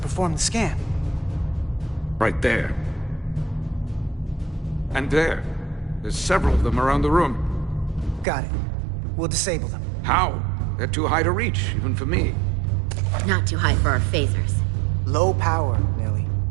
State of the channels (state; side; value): drops out; left; at 8.2 s